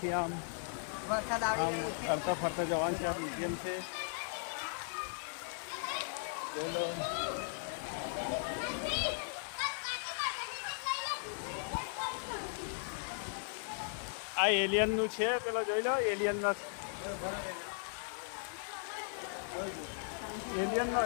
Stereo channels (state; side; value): silent; right; digital silence